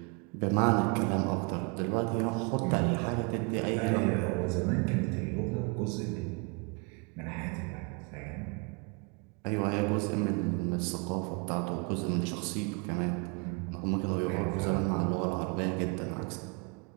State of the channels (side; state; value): left; quieter; 31.5 dB